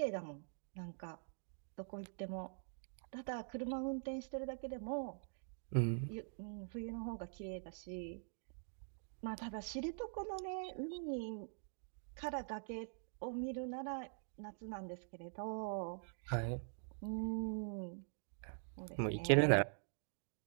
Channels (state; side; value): silent; left; digital silence